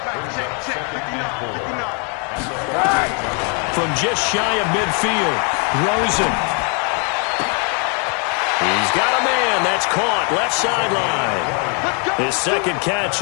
From just shy of midfield, Rosen. He's got a man. That's caught. Left sideline. His 2nd catch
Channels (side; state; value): right; quieter; 37.2 dB